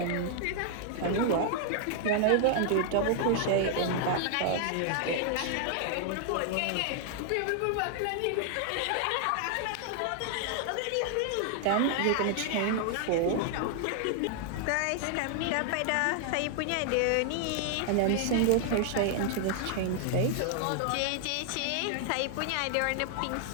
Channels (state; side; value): different; both; correlation 0.00